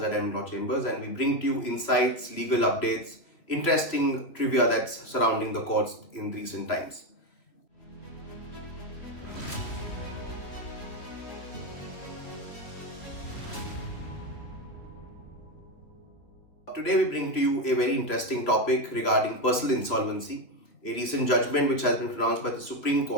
NM Law Chambers, and we bring to you insights, legal updates, interesting trivia that's surrounding the courts in recent times. Today, we bring to you a very interesting topic regarding personal insolvency, a recent judgment which has been pronounced by the Supreme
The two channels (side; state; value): right; late; 3.0 ms